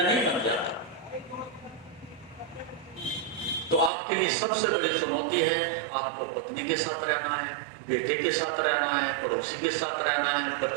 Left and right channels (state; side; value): drops out; left; at 3.9 s